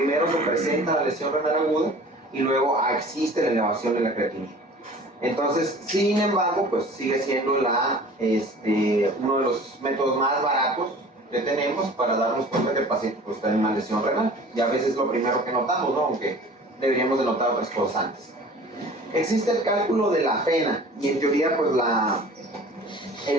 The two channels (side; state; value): both; normal; correlation 0.45